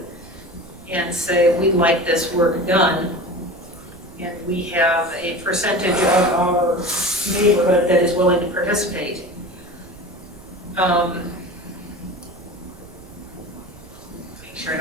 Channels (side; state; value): right; noise; rumble, 21 dB below the sound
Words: and say, we'd like this work done, and we have a percentage of our neighborhood that is willing to participate. Make sure I